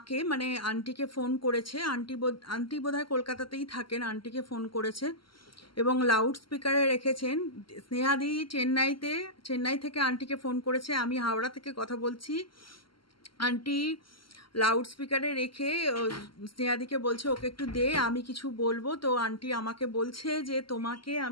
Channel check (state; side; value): late; right; 0.73 ms